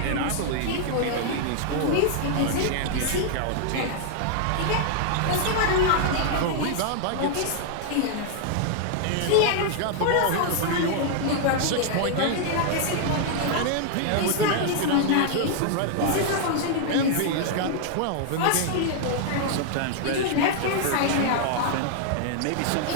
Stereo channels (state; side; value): different; both; correlation 0.00